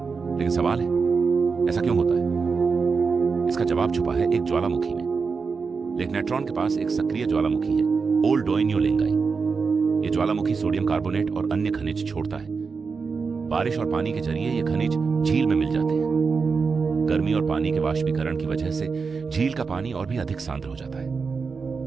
लेकिन सवाल है, ऐसा क्यों होता है? इसका जवाब छुपा है एक ज्वालामुखी में। लेक नेट्रॉन के पास एक सक्रिय ज्वालामुखी है, ओल डोइन्यो लेंगाई। यह ज्वालामुखी सोडियम कार्बोनेट और अन्य खनिज छोड़ता है। बारिश और पानी के जरिए ये खनिज झील में मिल जाते हैं। गर्मी और पानी के वाष्पीकरण की वजह से झील का पानी और भी अधिक सांद्र हो जाता है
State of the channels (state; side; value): quieter; left; 5.0 dB